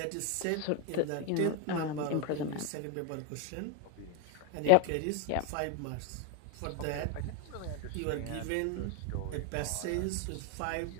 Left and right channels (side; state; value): both; different; correlation 0.01